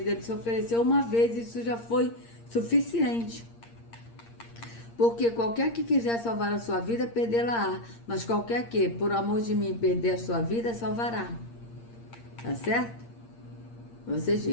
ele se ofereceu uma vez e isso já foi suficiente. Porque qualquer que quiser salvar a sua vida, perdê-la-á. Mas qualquer que, por amor de mim, perder a sua vida, salvará. Tá certo? Vocês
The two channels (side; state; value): right; late; 8.7 ms